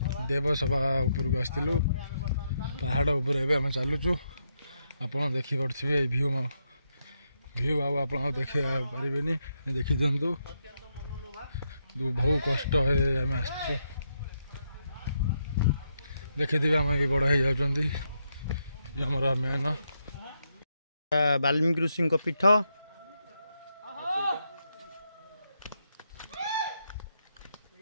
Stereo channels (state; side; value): inverted; both; correlation -0.81